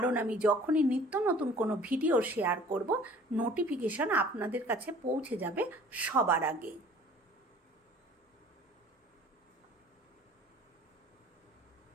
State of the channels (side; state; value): both; normal; correlation 0.50